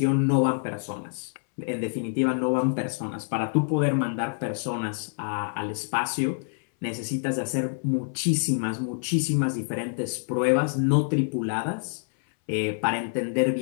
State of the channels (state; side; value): silent; right; 61 dB below the other